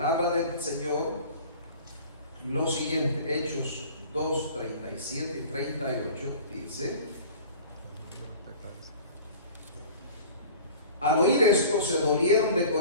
del Señor lo siguiente. Hechos 2, 37 y 38 dice: al oír esto se dolieron de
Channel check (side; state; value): both; inverted; correlation -0.43